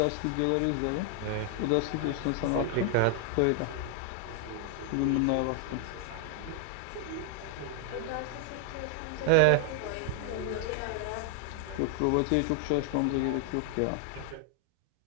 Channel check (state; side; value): different; both; correlation 0.00